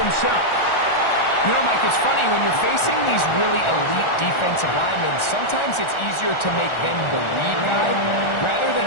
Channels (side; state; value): right; late; 1.4 ms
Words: You know, Mike, it's funny, when you're facing these really elite defensive linemen, sometimes it's easier to make them the lead guy rather than